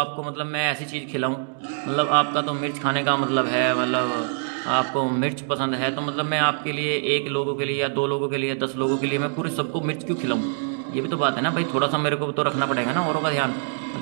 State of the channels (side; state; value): left; silent; 62 dB below the other